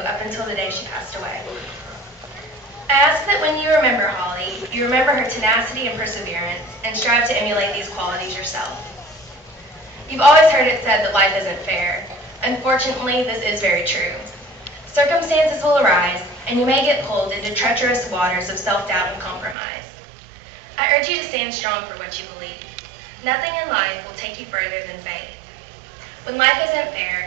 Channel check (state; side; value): drops out; left; at 19.6 s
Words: until the day she passed away. I ask that when you remember Holly, you remember her tenacity and perseverance, and strive to emulate these qualities yourself. You've always heard it said that life isn't fair. Unfortunately, this is very true. Circumstances will arise, and you may get pulled into treacherous waters of self-doubt and compromise. I urge you to stand strong for what you believe. Nothing in life will take you further than faith. When life isn't